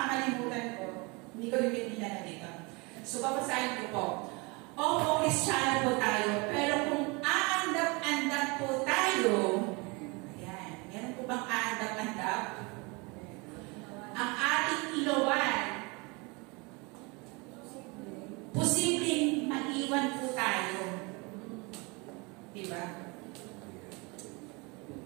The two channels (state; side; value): quieter; left; 27.9 dB